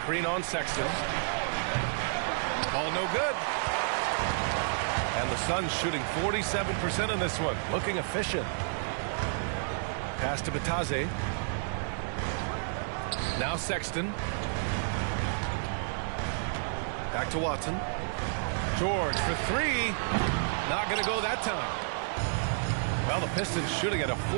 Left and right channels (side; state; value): left; silent; digital silence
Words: on Sexton. Ball no good. And the Suns shooting 47% in this one. Looking efficient. Pass to Bataze. Now Sexton. Back to Watson. George for 3. Not going to go that time. Well, the Pistons shooting at a